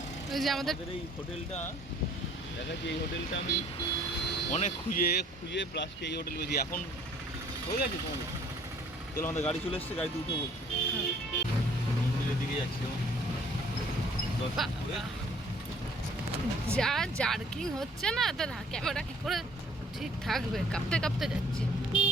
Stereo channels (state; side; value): normal; both; correlation 0.56